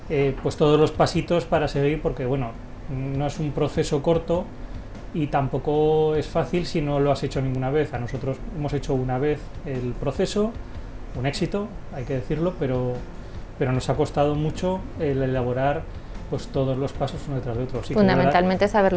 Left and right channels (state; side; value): identical; both; correlation 1.00